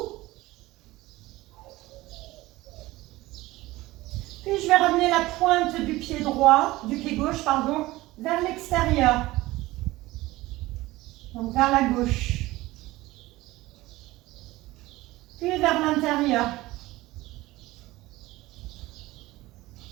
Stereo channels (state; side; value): quieter; left; 18.6 dB